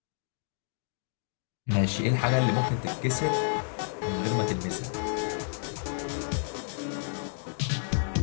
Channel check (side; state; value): right; silent; digital silence